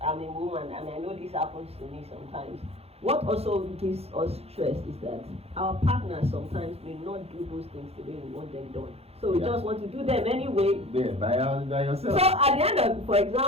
and I know this happens to me sometimes. What also gives us stress is that our partners sometimes may not do those things the way we want them done. So we just want to do them anyway. Yeah, by yourself. So at the end of, for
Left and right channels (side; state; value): left; late; 0.29 ms